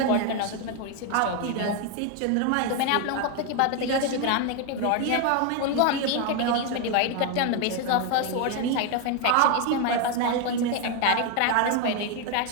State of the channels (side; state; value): both; different; correlation 0.01